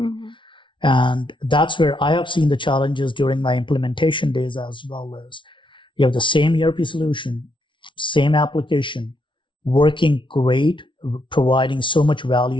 And that's where I have seen the challenges during my implementation days as well. As you have the same ERP solution, same application, working great, providing so much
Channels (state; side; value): late; right; 0.24 ms